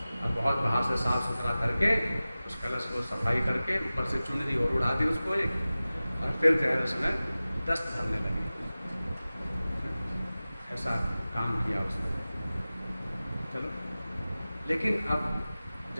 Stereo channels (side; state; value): both; inverted; correlation -0.97